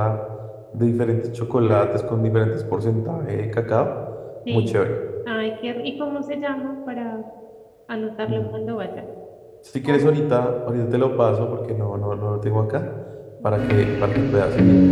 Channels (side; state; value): both; identical; correlation 1.00